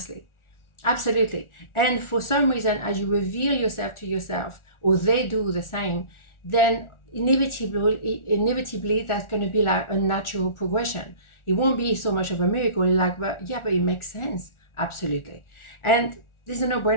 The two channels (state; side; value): late; right; 1.4 ms